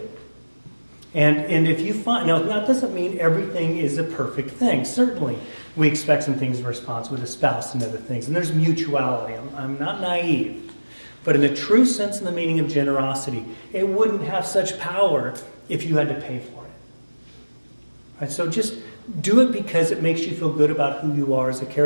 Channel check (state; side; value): inverted; both; correlation -1.00